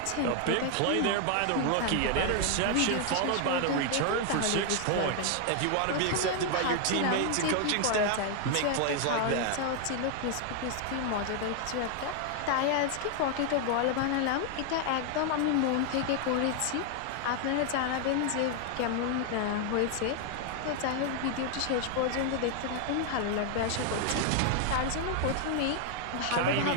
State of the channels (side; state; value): both; different; correlation 0.00